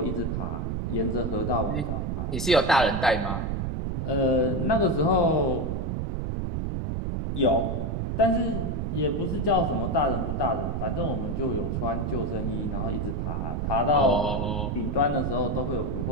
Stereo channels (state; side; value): noise; right; rumble, 1 dB below the sound